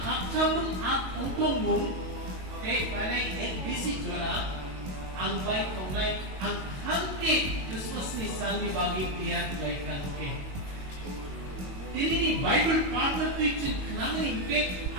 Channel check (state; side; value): late; left; 22 ms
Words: at ongkongmun te panay bisi jora ang baik kongnay ang hangke Christmas ni sami bagi piyan baik hangke. Tini ni Bible partner picture kanangin ke